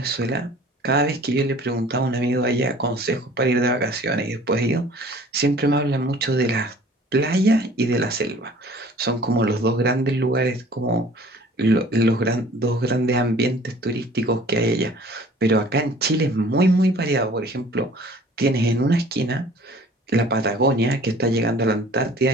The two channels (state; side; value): normal; both; correlation 0.50